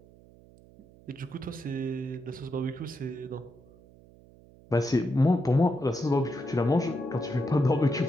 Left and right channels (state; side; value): noise; right; hum, 25 dB below the sound